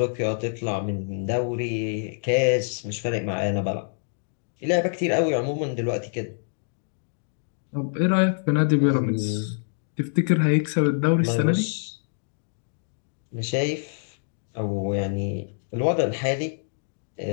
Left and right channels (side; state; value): right; silent; digital silence